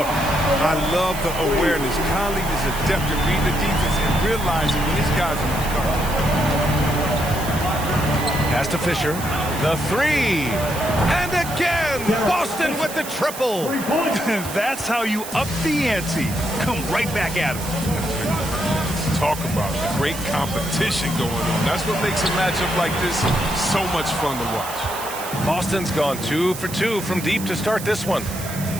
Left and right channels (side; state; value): right; noise; hiss, 10 dB below the sound